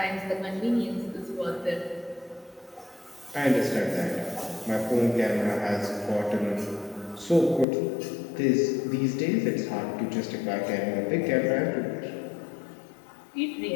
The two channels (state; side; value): drops out; right; at 7.7 s